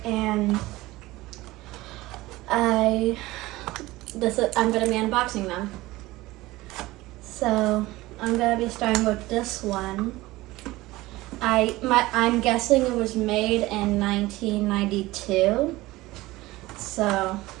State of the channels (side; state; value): left; quieter; 18.9 dB